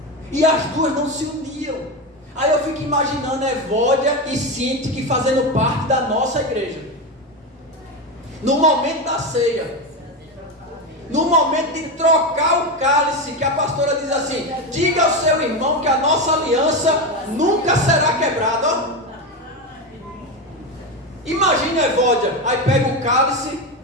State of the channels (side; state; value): both; normal; correlation 0.15